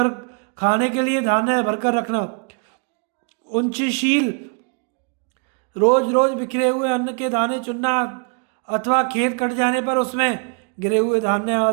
खाने के लिए धान्य भरकर रखना, उच्चशील, रोज रोज बिखरे हुए अन्न के दाने चुनना अथवा खेत कट जाने पर उसमें गिरे हुए धान्य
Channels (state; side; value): quieter; left; 38.1 dB